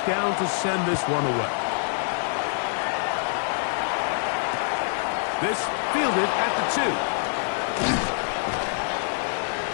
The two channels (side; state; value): right; silent; digital silence